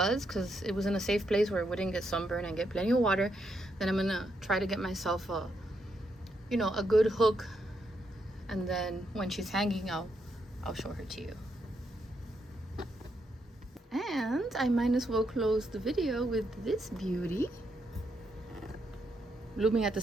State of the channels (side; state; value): both; normal; correlation 0.79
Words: because it was in a safe place where it wouldn't get sunburned and get plenty of water. Then I'm gonna try to get myself a good hook. And then when she's hanging, I'll show her to you. And I might as well close the video with this beauty, blooming at the